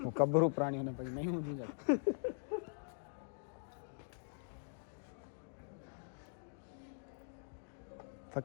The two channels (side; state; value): right; silent; digital silence